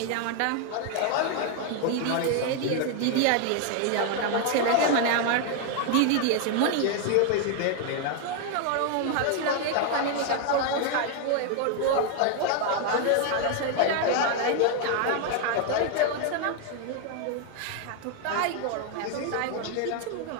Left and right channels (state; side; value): different; both; correlation 0.00